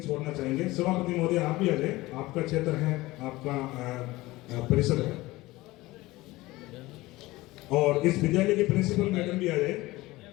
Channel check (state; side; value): quieter; right; 19.5 dB